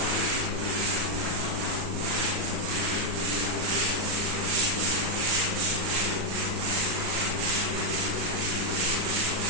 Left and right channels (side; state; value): left; late; 38 ms